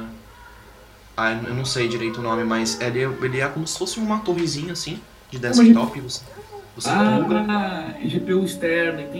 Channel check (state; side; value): identical; both; correlation 1.00